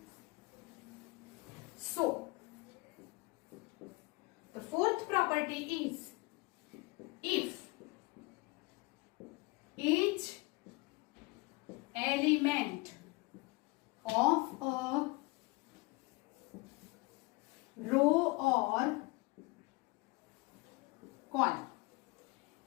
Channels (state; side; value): quieter; right; 25.8 dB